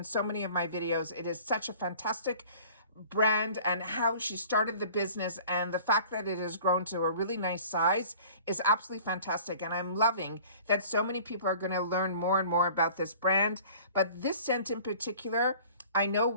so many of my videos. It is such a fantastic brand, and how she started the business and the fact that it has grown to a really nice size is absolutely fantastic. And I'm loving that so many people are going to learn more and more about this brand. But this scent in particular, I know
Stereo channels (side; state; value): both; inverted; correlation -0.47